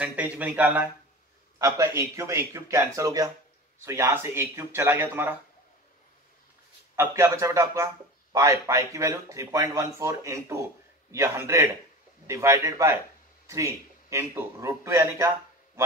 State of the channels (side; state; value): both; normal; correlation 0.33